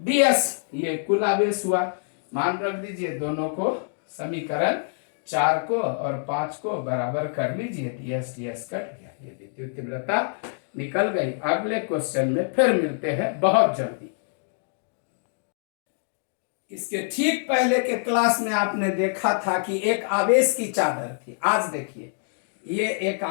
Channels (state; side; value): silent; right; digital silence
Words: ये कुल आवेश हुआ। मान रख दीजिए, दोनों को समीकरण 4 को और 5 को बराबर कर लीजिए, ds ds कट गया, ये विद्युत तीव्रता निकल गई। अगले क्वेश्चन में फिर मिलते हैं बहुत जल्दी। इसके ठीक पहले के क्लास में आपने देखा था कि एक आवेश की चादर थी। आज देखिए, ये एक